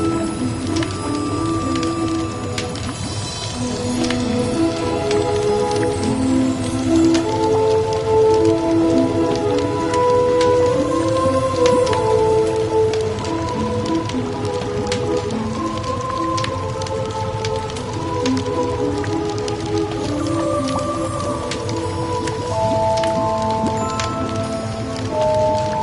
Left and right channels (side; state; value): both; identical; correlation 1.00